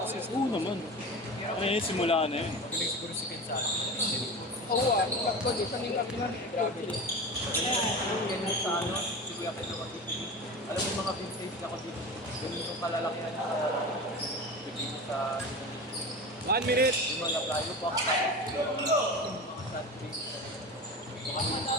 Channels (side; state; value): both; normal; correlation 0.29